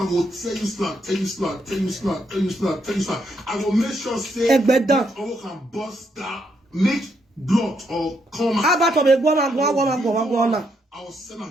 tell you slap. I will make sure say I can bust that, make blood or come out. I will send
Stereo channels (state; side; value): normal; both; correlation 0.76